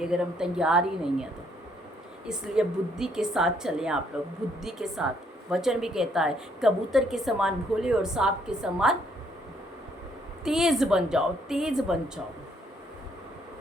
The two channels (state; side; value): normal; both; correlation 0.68